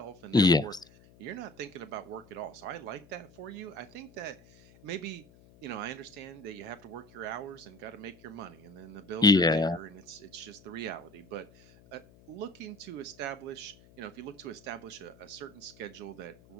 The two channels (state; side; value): noise; left; hum, 25 dB below the sound